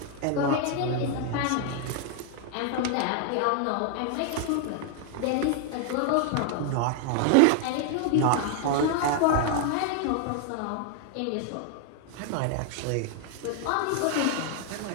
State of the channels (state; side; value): different; both; correlation 0.00